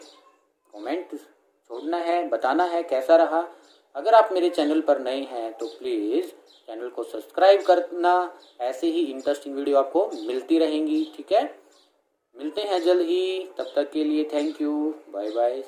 कमेंट छोड़ना है, बताना है कैसा रहा। अगर आप मेरे चैनल पर नए हैं तो प्लीज़ चैनल को सब्सक्राइब करना, ऐसे ही इंटरेस्टिंग वीडियो आपको मिलती रहेंगी, ठीक है। मिलते हैं जल्द ही, तब तक के लिए thank you, bye bye,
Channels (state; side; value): identical; both; correlation 1.00